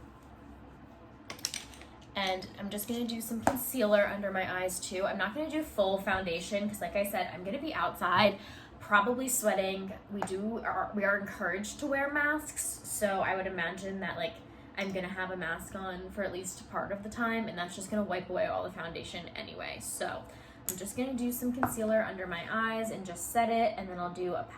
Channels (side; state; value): both; identical; correlation 1.00